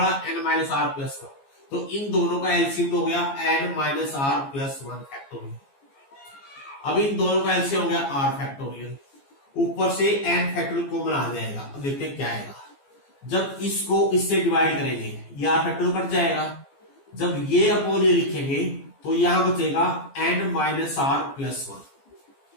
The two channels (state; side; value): late; right; 15 ms